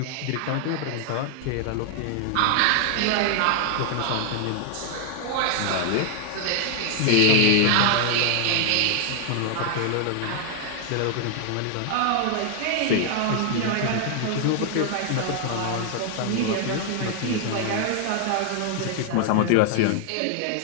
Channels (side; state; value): both; different; correlation 0.00